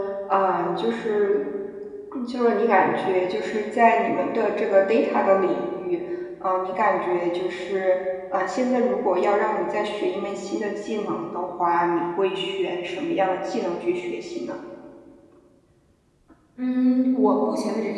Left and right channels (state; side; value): identical; both; correlation 1.00